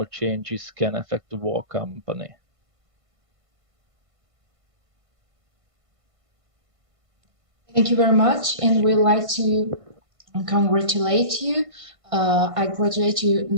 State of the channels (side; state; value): left; late; 1.5 ms